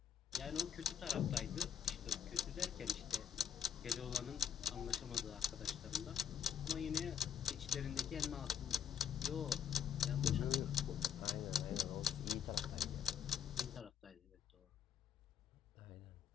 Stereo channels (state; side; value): quieter; right; 8.5 dB